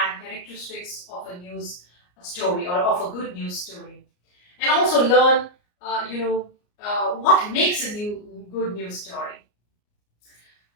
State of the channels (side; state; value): right; late; 34 ms